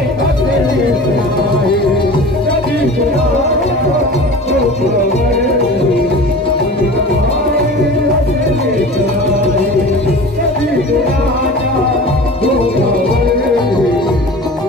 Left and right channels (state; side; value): normal; both; correlation 0.37